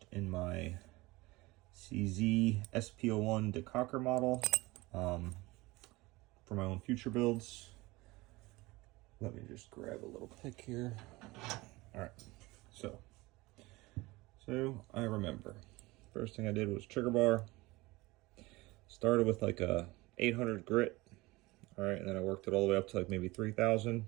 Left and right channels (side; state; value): left; quieter; 21.4 dB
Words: in my CZ SP-01 Decocker model for my own future builds. Let me just grab a little pick here. All right, so I remember first thing I did was trigger bar. Started with like a 800 grit. All right, and then I worked it all the way up to like maybe 3,000.